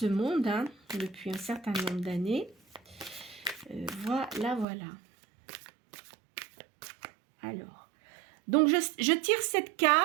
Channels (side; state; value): left; drops out; at 4.7 s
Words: monde, hein, depuis un certain nombre d'années. Voilà, voilà. Alors, donc je tire cette